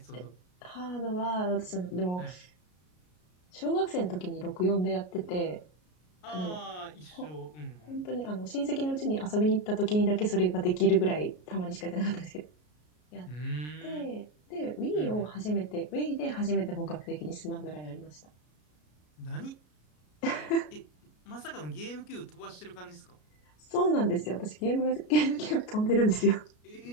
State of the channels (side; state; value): right; late; 33 ms